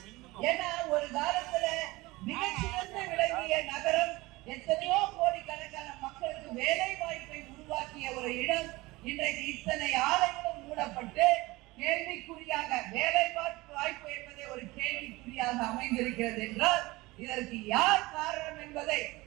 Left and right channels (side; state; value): left; quieter; 21.0 dB